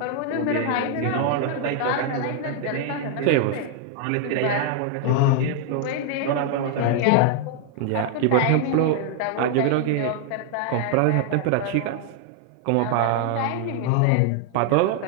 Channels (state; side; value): different; both; correlation 0.00